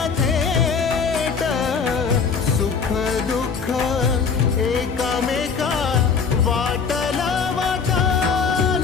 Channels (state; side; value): quieter; right; 5.7 dB